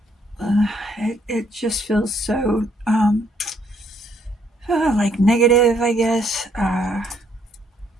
it just feels so, like negative, I guess. I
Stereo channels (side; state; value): both; normal; correlation 0.69